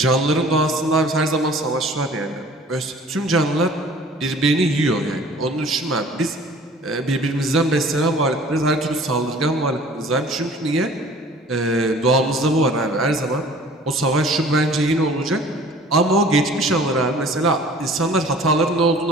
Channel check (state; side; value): normal; both; correlation 0.49